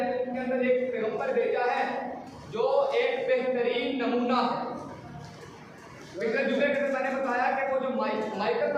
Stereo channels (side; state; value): both; identical; correlation 1.00